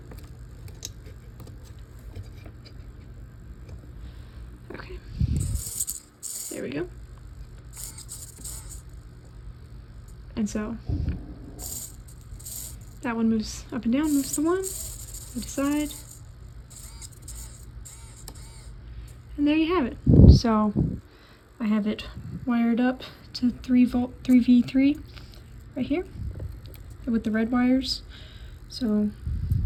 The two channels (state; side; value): identical; both; correlation 1.00